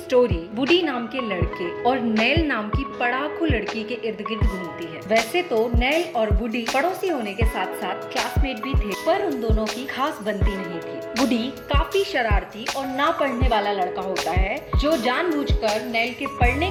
वुडी नाम के लड़के और नेल नाम की पढ़ाकू लड़की के इर्द गिर्द घूमती है। वैसे तो नेल और वुडी पड़ोसी होने के साथ साथ क्लासमेट भी थे, पर उन दोनों की खास बनती नहीं थी। वुडी काफी शरारती और ना पढ़ने वाला लड़का होता है जो जानबूझकर नेल के पढ़ने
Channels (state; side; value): identical; both; correlation 1.00